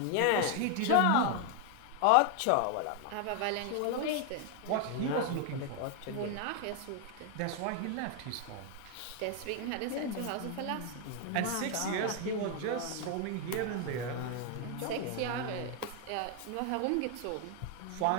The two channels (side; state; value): both; different; correlation 0.01